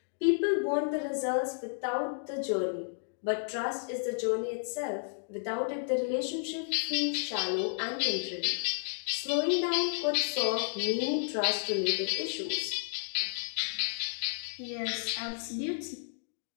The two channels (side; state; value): right; silent; digital silence